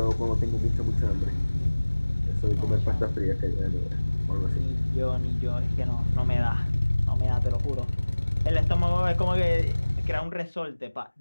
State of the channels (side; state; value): both; inverted; correlation -1.00